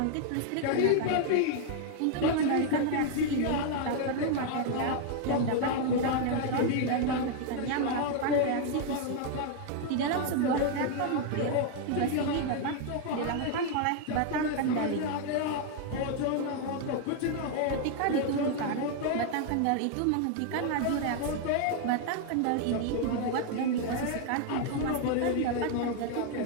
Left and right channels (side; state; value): both; different; correlation 0.00